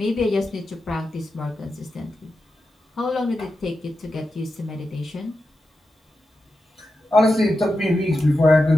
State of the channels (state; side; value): normal; both; correlation 0.90